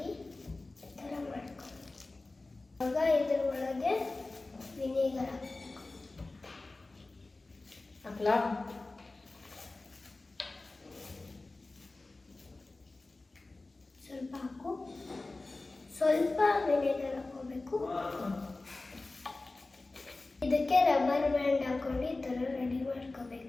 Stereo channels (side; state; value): right; quieter; 3.2 dB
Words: ಈ ಥರ ಮಾಡ್ಕೊಂಡು ಇವಾಗ ಇದ್ರ ಒಳಗೆ ವಿನೆಗರ್ ಹಾಕ್ಲಾ? ಸ್ವಲ್ಪ ಹಾಕು. ಸ್ವಲ್ಪ ವಿನೆಗರ್ ಹಾಕೋಬೇಕು. ಇದಕ್ಕೆ ರಬ್ಬರ್ ಬ್ಯಾಂಡ್ ಹಾಕೊಂಡು ಈ ಥರ ರೆಡಿ